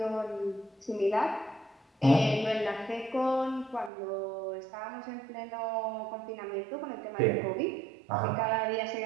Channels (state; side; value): drops out; left; at 3.9 s